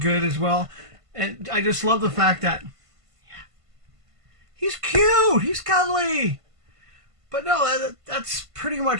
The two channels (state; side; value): late; left; 1.5 ms